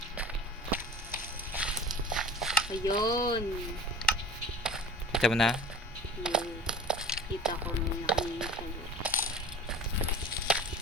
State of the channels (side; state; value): both; normal; correlation 0.38